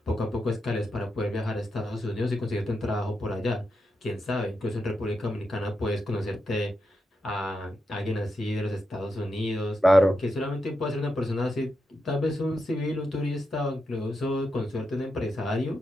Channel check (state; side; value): normal; both; correlation 0.86